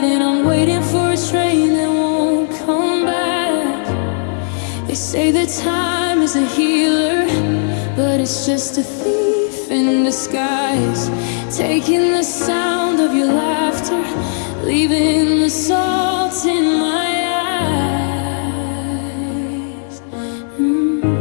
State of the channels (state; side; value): silent; right; 66 dB below the other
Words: and I'm waiting for a train that won't come back. They say that time is a healer, but it's just a thief in disguise, taking the sound of your laughter, leaving the salt in my eyes.